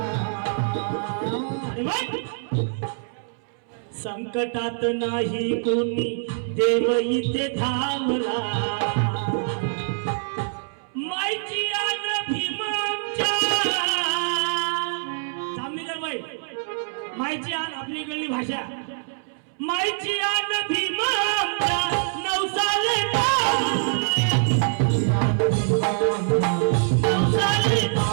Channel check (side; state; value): left; silent; 62 dB below the other